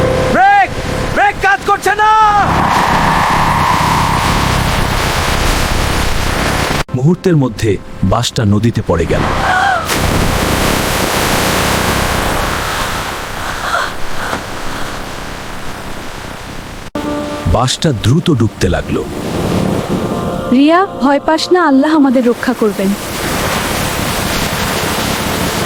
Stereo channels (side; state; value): both; identical; correlation 1.00